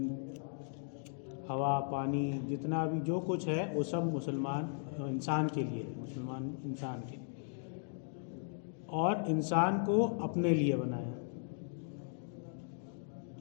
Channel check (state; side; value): silent; right; digital silence